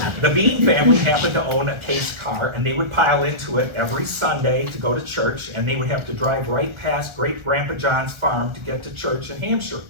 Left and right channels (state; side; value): late; left; 1.4 ms